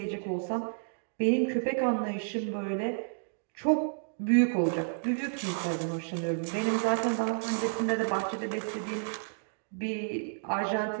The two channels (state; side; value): silent; left; digital silence